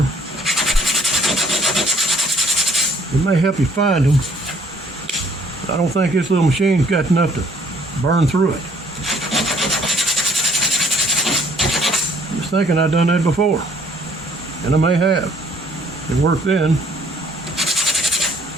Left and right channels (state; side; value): normal; both; correlation 0.62